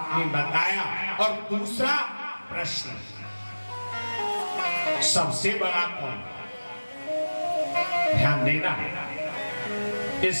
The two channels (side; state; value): both; inverted; correlation -1.00